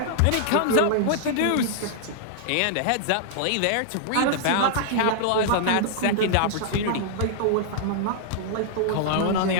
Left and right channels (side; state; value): both; different; correlation -0.01